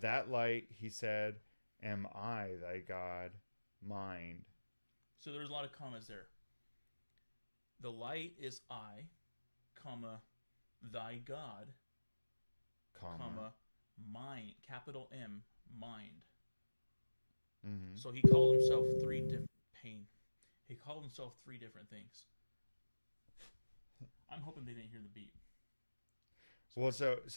light, he said, am I thy God, mind. So there's a lot of commas there. The light is I, comma, thy God, comma, mind, capital M, mind. Mm-hmm. So he called himself three different things. I'm hoping they didn't hear the beat. Well, so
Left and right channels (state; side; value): inverted; both; correlation -1.00